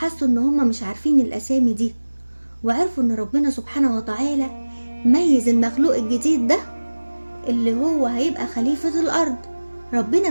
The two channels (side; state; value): both; inverted; correlation -1.00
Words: إن هم مش عارفين الأسامي دي، وعرفوا إن ربنا سبحانه وتعالى ميز المخلوق الجديد ده اللي هو هيبقى خليفة الأرض. ربنا